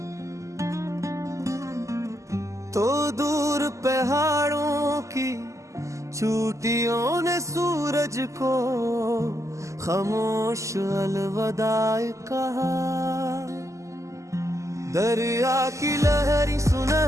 तो दूर पहाड़ों की चोटियों ने सूरज को खामोश अलविदा कहा। दरिया की लहरी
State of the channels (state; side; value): late; left; 0.15 ms